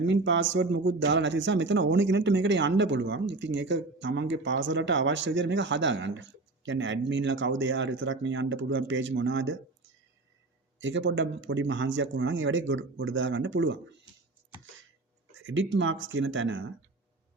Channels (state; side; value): quieter; left; 3.2 dB